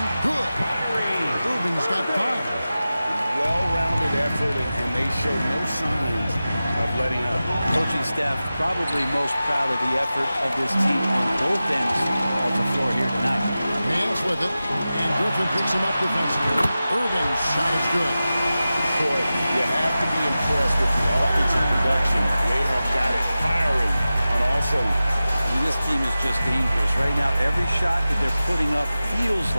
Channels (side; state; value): both; inverted; correlation -0.95